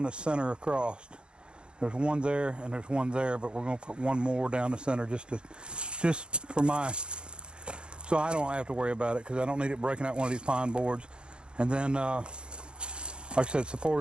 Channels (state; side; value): late; left; 0.052 ms